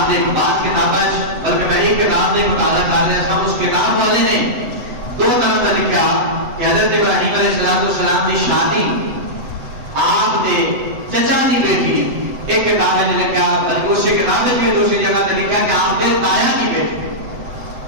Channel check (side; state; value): left; late; 7.9 ms